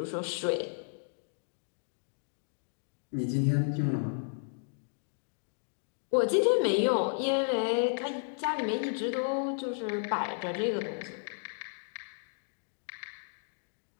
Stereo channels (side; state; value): right; silent; digital silence